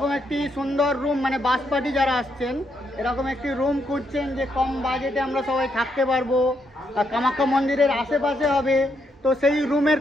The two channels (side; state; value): both; normal; correlation 0.77